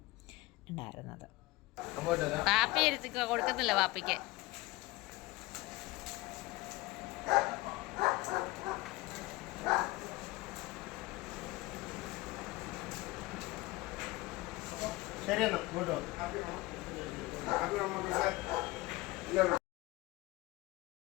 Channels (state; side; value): quieter; right; 20.5 dB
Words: ഉണ്ടായിരുന്നത്. പാപ്പി കൊടുക്കുന്നില്ല പാപ്പിക്ക്. ശരിയെന്നാ കേട്ടോ.